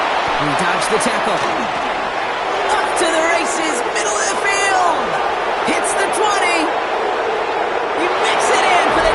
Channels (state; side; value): identical; both; correlation 1.00